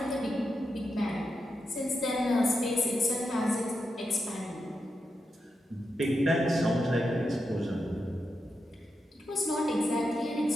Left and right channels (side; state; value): both; normal; correlation 0.87